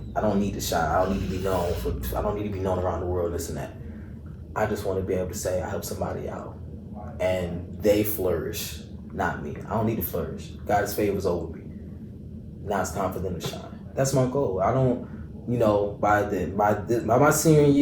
I don't need to shine. I don't need to be known I don't need to be known around the world. This and that. I just want to be able to say I help somebody out, and they flourish, not me. I don't need to flourish. God's favor is over me. Now it's time for them to shine. That's my goal. I don't, by my senior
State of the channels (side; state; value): both; identical; correlation 1.00